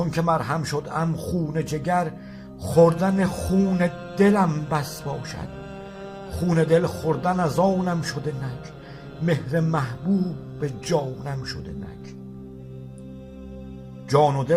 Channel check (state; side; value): identical; both; correlation 1.00